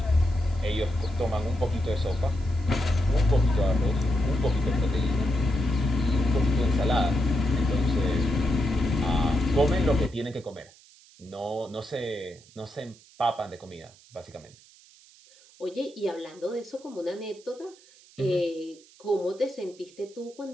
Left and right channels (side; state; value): right; noise; hiss, 26 dB below the sound